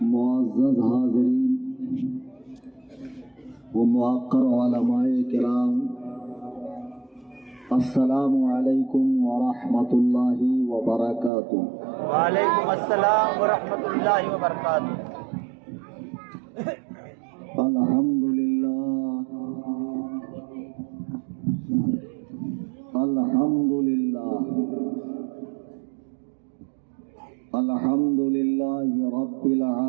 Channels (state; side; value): drops out; left; at 11.3 s